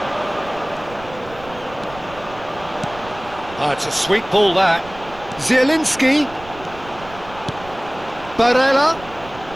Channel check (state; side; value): noise; right; rumble, 18 dB below the sound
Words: It's a sweet ball, that. Zielinski. Barella.